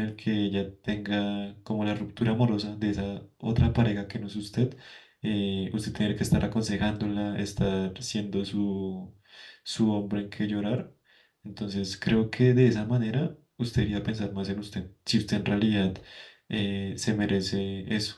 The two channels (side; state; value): both; identical; correlation 1.00